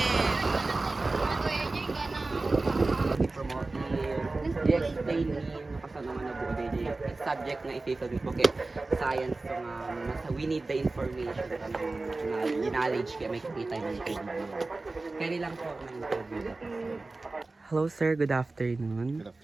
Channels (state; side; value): quieter; left; 3.3 dB